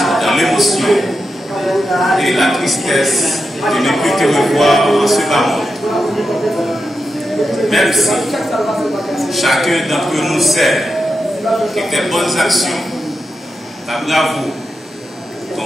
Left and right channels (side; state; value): both; normal; correlation 0.88